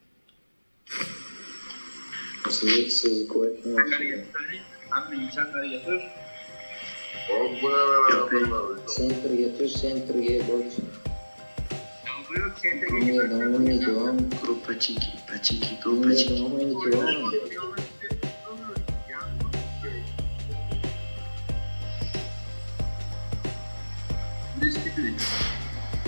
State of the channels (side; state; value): both; inverted; correlation -1.00